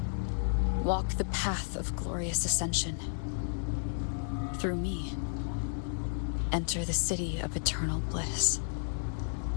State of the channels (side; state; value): right; silent; digital silence